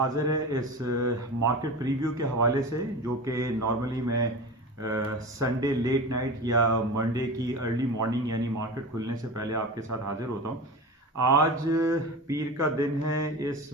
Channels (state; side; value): normal; both; correlation 0.30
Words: है इस मार्केट प्रीव्यू के हवाले से, जो कि नॉर्मली मैं संडे लेट नाइट या मंडे की अर्ली मॉर्निंग यानी मार्केट खुलने से पहले आपके साथ हाजिर होता हूँ। आज पीर का दिन है, इस